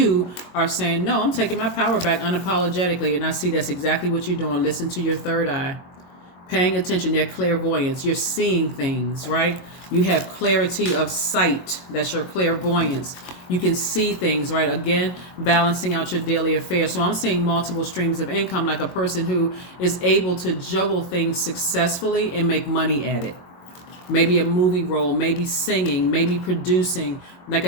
are saying, no, I'm taking my power back unapologetically. And I see that's exactly what you're doing. Listen to your third eye. Paying attention, your clairvoyance. You're seeing things, right? You have clarity of sight. That's your clairvoyance. You can see things, right? Again, balancing out your daily affairs. So I'm seeing multiple streams of income, like a person who is able to juggle things successfully and make money at it. Maybe a movie role, maybe singing, maybe producing. Like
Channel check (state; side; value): late; right; 22 ms